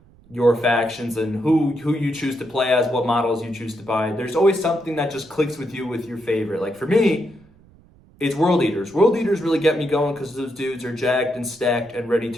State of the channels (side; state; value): right; noise; rumble, 28 dB below the sound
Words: your factions and who you choose to play as, what models you choose to buy. There's always something that just clicks with you with your favorite. Like for me, it's World Eaters. World Eaters really get me going because those dudes are jacked and stacked and ready